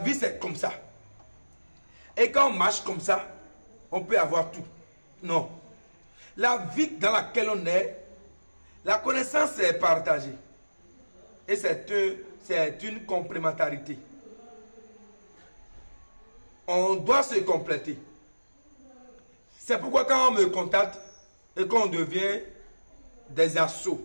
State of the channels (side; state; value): both; inverted; correlation -1.00